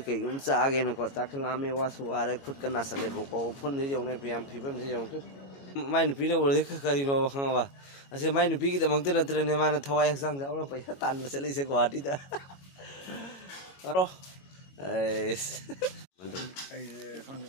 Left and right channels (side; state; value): right; late; 22 ms